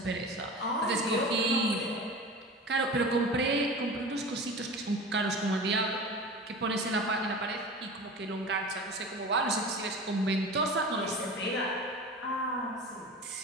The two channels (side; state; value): both; normal; correlation 0.34